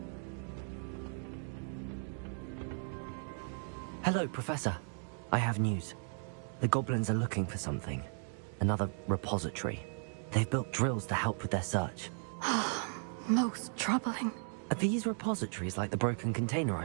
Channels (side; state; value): left; silent; 54 dB below the other